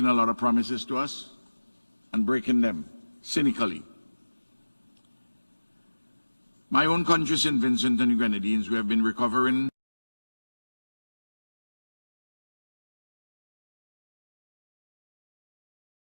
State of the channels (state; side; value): inverted; both; correlation -1.00